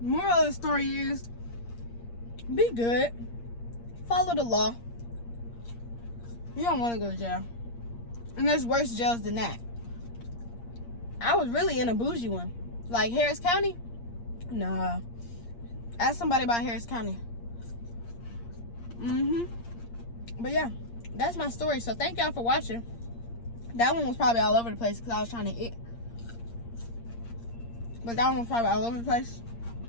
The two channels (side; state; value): right; late; 8.6 ms